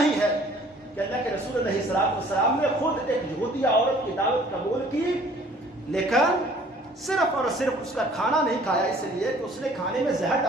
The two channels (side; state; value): both; normal; correlation 0.54